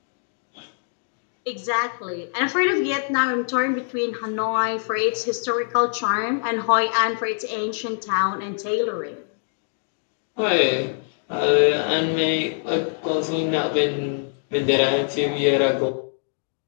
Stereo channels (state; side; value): silent; right; digital silence